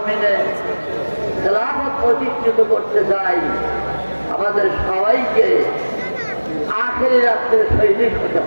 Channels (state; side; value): inverted; both; correlation -1.00